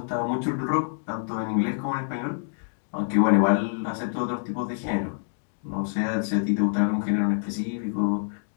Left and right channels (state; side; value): silent; right; digital silence